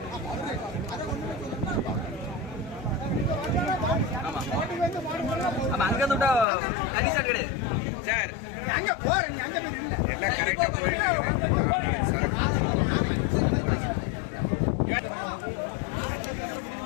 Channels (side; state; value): right; drops out; at 6.5 s